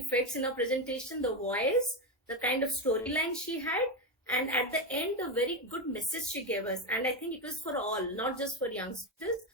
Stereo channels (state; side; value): normal; both; correlation 0.11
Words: in her presentation, the voice, the kind of storyline she had, and at the end, a very good message she gave us. And I think it was for all, not just for youngsters,